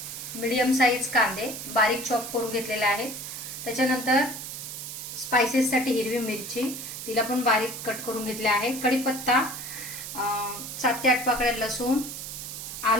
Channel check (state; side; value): noise; right; hiss, 8 dB below the sound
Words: मीडियम साईज कांदे बारीक चॉप करून घेतलेले आहेत. त्याच्यानंतर स्पाइसेससाठी हिरवी मिरची, तिला पण बारीक कट करून घेतले आहे. कढीपत्ता, 7 ते 8 पाकळ्या लसूण,